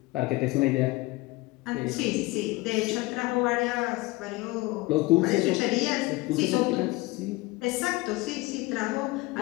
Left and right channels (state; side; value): quieter; right; 21.8 dB